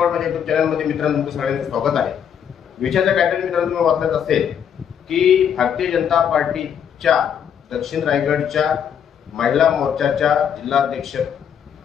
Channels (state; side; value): quieter; right; 8.3 dB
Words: माझ्या युट्यूब चॅनलमध्ये मित्रांनो तुमचं सगळ्यांचं स्वागत आहे। विषयाचा टायटल मित्रांनो तुम्ही वाचलाच असेल की भारतीय जनता पार्टीच्या दक्षिण रायगडच्या महिला मोर्चाच्या जिल्हाध्यक्ष